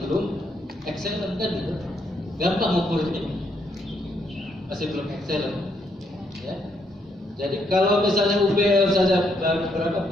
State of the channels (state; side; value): normal; both; correlation 0.75